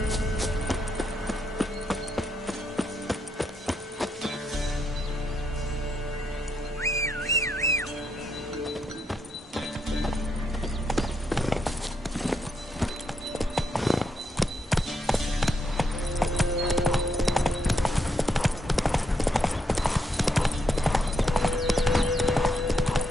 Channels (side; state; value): both; normal; correlation 0.78